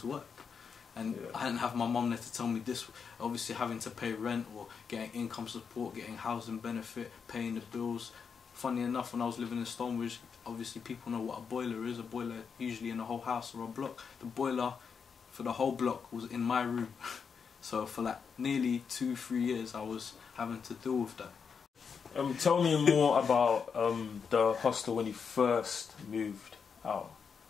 work. And I didn't have my mum there to tell me this. Obviously, having to pay rent or getting income support, getting housing benefit, paying the bills. Funny enough, when I was living in Stonebridge, obviously people know what a boiler is. A boiler usually in a whole house or a block. The boiler for the whole block was in my room. So for like nearly 2-3 years, I was having to deal with that. Tell me more about the hostel when you first moved out.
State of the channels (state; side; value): quieter; right; 6.2 dB